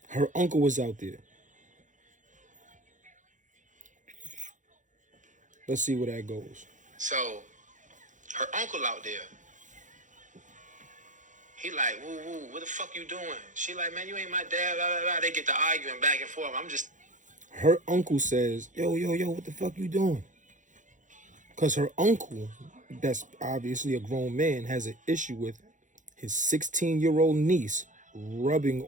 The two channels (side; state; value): left; late; 0.37 ms